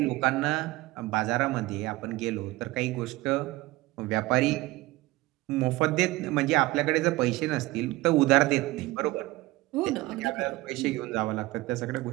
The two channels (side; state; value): left; quieter; 19.6 dB